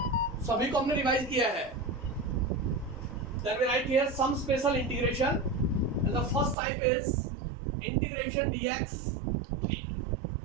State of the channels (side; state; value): left; drops out; at 6.6 s